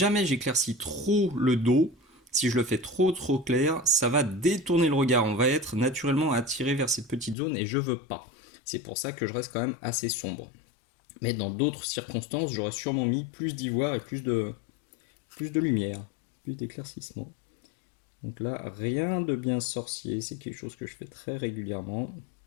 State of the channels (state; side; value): drops out; right; at 7.4 s